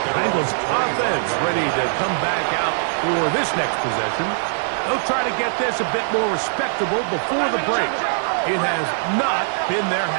The Bengals offense ready to come back out for this next possession. They'll try to get this a bit more respectable before the break. It has not been their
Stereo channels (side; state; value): left; silent; digital silence